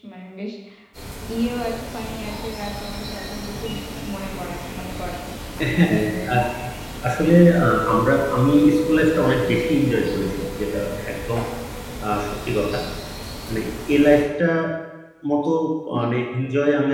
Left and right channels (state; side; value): identical; both; correlation 1.00